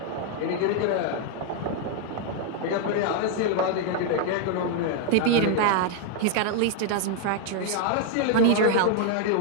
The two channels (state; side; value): different; both; correlation 0.00